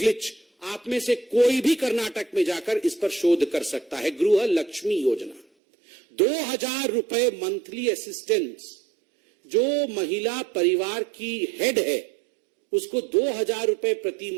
आप में से कोई भी कर्नाटक में जाकर इस पर शोध कर सकता है। गृह लक्ष्मी योजना, 2,000 रुपए मंथली असिस्टेंस। जो महिला परिवार की हेड है उसको 2,000 रुपए प्रति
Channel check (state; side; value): drops out; left; at 5.5 s